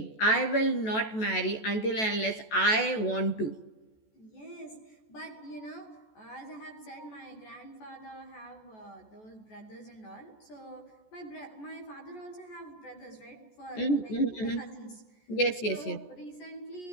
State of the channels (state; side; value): late; right; 14 ms